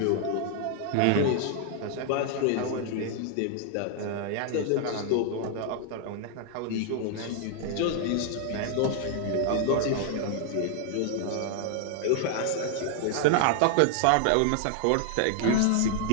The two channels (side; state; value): both; different; correlation 0.00